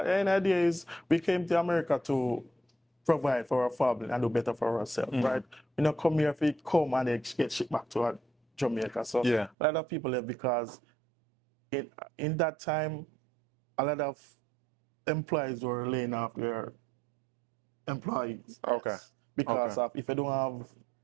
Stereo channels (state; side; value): drops out; left; at 9.6 s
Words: the end of the day is we came to America to provide for our family and do better for ourselves, right? We don't come here if we come and they get shipped back to Jamaica. So Yeah. a lot of people left because in that time, a lot of employees were laying off their employees. Okay. Yes. Because of if you don't have